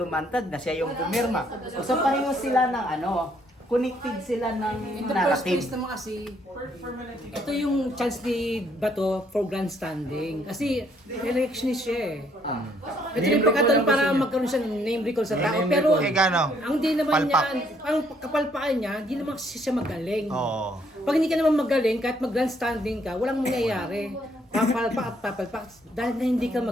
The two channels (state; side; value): normal; both; correlation 0.68